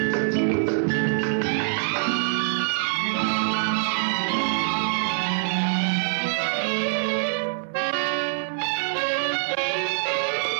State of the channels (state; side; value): silent; left; digital silence